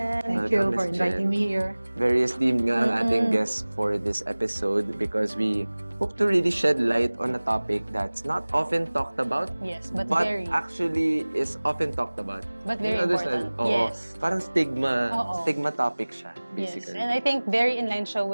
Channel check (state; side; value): inverted; both; correlation -1.00